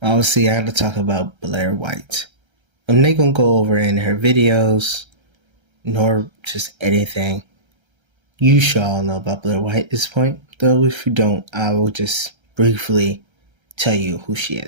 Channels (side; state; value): left; late; 1.3 ms